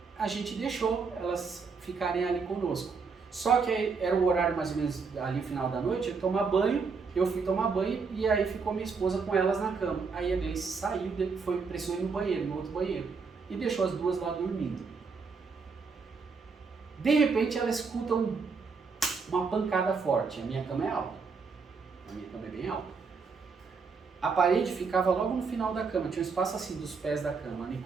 a gente deixou elas ficarem ali conosco. Só que era o horário mais ou menos ali no final da noite, eu tomar banho, eu fui tomar banho e aí ficou minha esposa com elas na cama. Aí a Gleice saiu, precisou ir no banheiro, no outro banheiro, e deixou as duas lá dormindo. De repente ela escuta uma pancada forte. A minha cama é alta. A minha cama é bem alta. A parede ficava logo no final da cama. Tinha um espaço assim dos pés da cama. A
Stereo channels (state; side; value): quieter; left; 5.0 dB